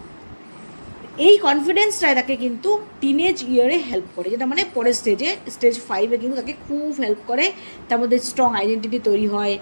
এই কনফিডেন্সটাই তাকে কিন্তু টিনেজ ইয়ারে হেল্প করে, যেটা মানে পরের স্টেজ 5-এ কিন্তু তাকে খুব হেল্প করে। তার মধ্যে স্ট্রং আইডেন্টিটি তৈরি হয়,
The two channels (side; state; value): both; inverted; correlation -1.00